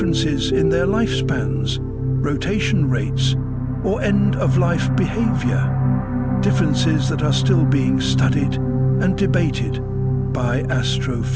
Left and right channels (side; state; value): both; identical; correlation 1.00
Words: in their lifespans, rotation rates, or end-of-life behavior, differences that are still being studied and debated by